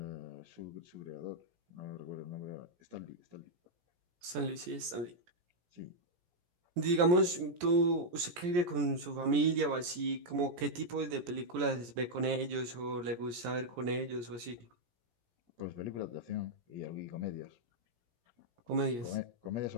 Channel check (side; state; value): left; late; 17 ms